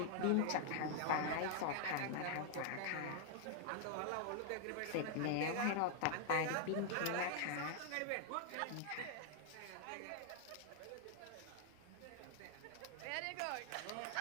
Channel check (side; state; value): both; different; correlation 0.00